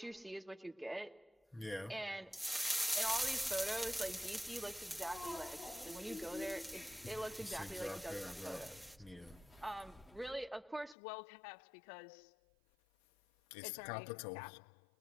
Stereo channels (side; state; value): right; drops out; at 11.0 s